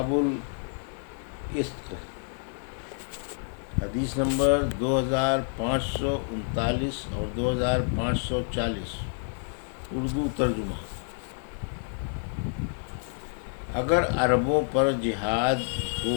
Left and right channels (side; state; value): right; silent; 59 dB below the other